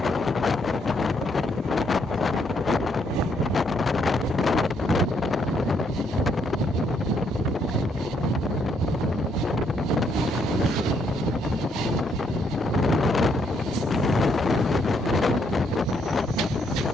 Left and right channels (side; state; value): both; normal; correlation 0.72